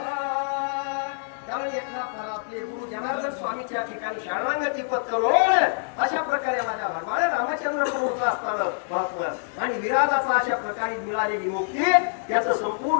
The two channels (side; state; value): right; silent; digital silence